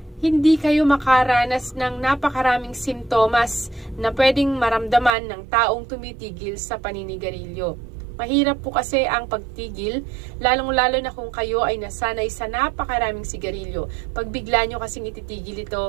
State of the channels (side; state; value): left; drops out; at 5.1 s